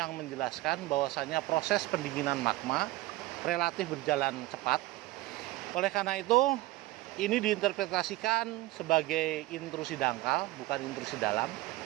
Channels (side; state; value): left; quieter; 18.6 dB